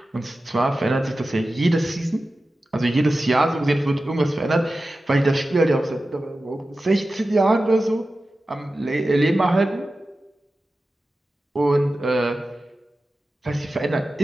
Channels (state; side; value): normal; both; correlation 0.94